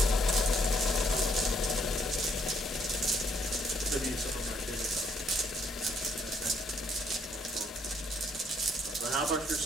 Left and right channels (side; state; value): both; normal; correlation 0.68